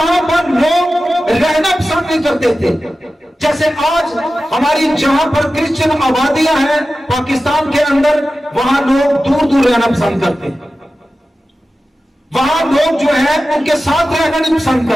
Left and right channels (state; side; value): normal; both; correlation 0.94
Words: पर लोग रहना पसंद नहीं करते थे। जैसे आज हमारी जहां पर क्रिश्चियन आबादियां हैं पाकिस्तान के अंदर, वहां लोग दूर दूर रहना पसंद करते हैं, वहां लोग जो है उनके साथ रहना नहीं पसंद